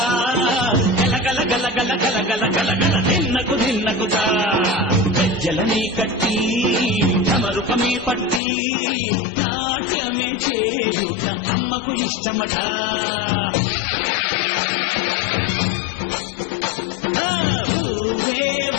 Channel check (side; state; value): right; drops out; at 8.4 s